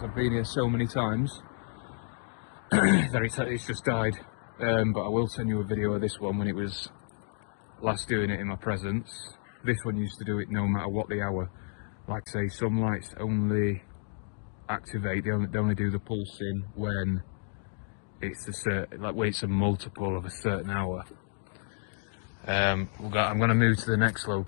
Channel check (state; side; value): silent; right; 57 dB below the other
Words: I've been here so many times that it's just died. But I will send you a video of this one when it was last doing it in my presence. This one used to do it no matter what the hour. Like I say, some lights only activate, they only do the pulsing when it's a certain, like when it's a multiple of a certain hour. I'm going to move to the next